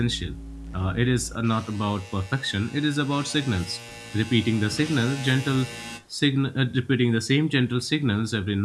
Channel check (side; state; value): both; identical; correlation 1.00